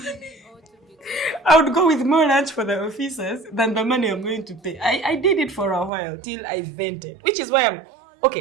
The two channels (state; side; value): drops out; left; at 5.9 s